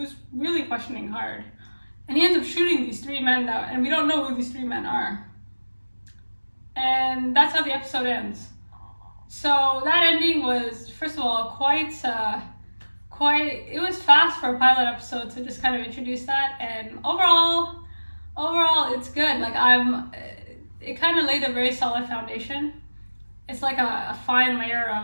really questioning hard. And he ends up shooting these three men and we don't know who these three men are. And that's how the episode ends. So that ending was, first of all, it was fast for a pilot episode to just kind of introduce that. And overall, it's good. Like it kind of laid a very solid foundation. It's like a fine layer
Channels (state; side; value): inverted; both; correlation -1.00